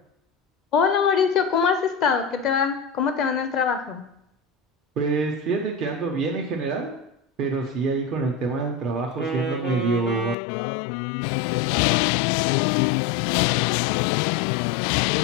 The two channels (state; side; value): drops out; right; at 10.4 s